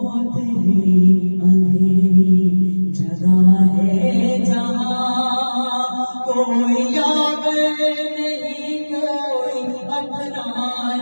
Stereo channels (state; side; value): inverted; both; correlation -1.00